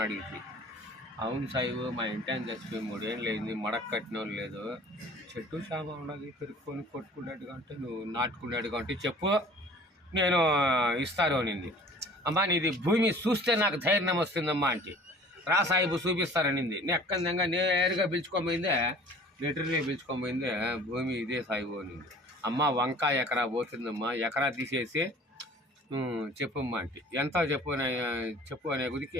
అడిగింది. అవును సాయిబు మా ఇంటి చచ్చిపోయి 3 ఏళ్ళు అయింది, మడక కట్టిన లేదు, చెట్టు చేమ ఉండదు, పెరుక్కొని కొట్టుకునేట్టుగా అంటే నువ్వు నాటుకునేట్టుగా అంటే చెప్పు నేను ఇస్తాను అనింది. అమ్మా నీది భూమి చూస్తే నాకు ధైర్యం వస్తుందమ్మా అంటే రా సాయిబు చూపిస్తారనింది. నెక్కందంగా నేరుగా పిలుచుకోబోయిందే, లెటర్లే పిలుచుకోబోయిందే భూమి ఇదే సాయిబు అనింది. అమ్మ వంకాయ ఎకరా పోతుందమ్మా, ఎకరా తీసేసి చెప్పమ్మా అంటే ఎంత చెప్పు అనే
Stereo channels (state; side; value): normal; both; correlation 0.48